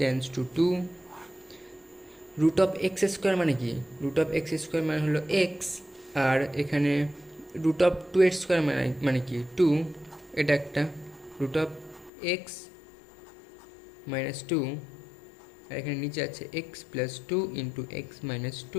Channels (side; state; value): right; drops out; at 12.1 s